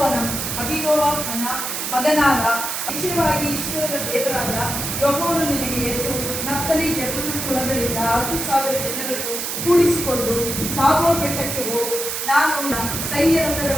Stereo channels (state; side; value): noise; right; hiss, 3 dB below the sound